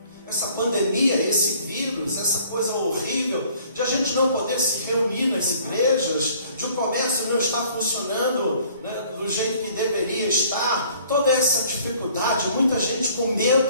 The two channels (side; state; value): both; inverted; correlation -0.56